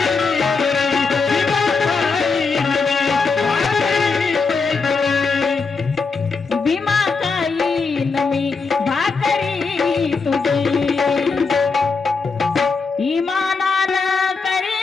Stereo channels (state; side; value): quieter; right; 4.6 dB